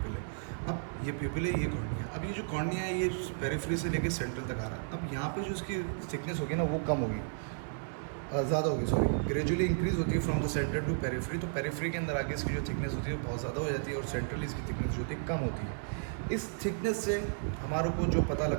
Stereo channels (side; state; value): left; silent; 56 dB below the other